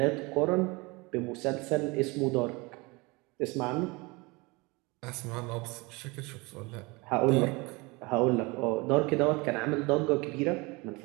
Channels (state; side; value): quieter; left; 25.5 dB